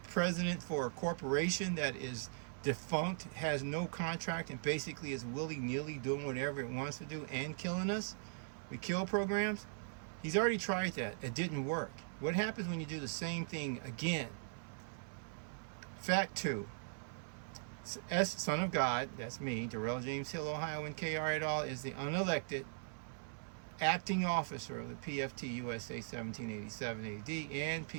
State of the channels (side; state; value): left; silent; 51 dB below the other